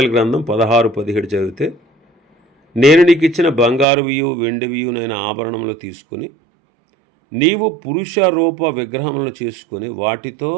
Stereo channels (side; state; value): left; drops out; at 3.9 s